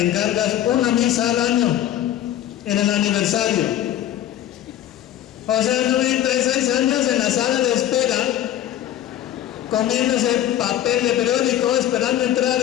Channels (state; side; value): quieter; right; 12.0 dB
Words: encargas una misa al año, en el aniversario. O sea, 96 años en la sala de espera, comiéndose papel de periódico, esperando entrar